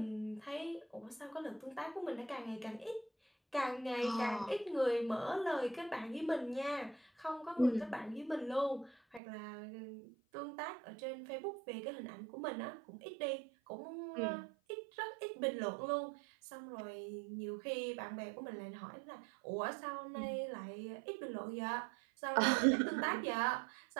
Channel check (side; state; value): left; drops out; at 9.2 s